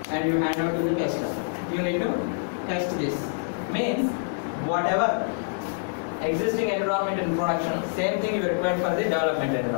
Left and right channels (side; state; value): right; silent; digital silence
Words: and you hand out to the tester. you need to test this. Means whatever existing environment in production, same thing you require for the development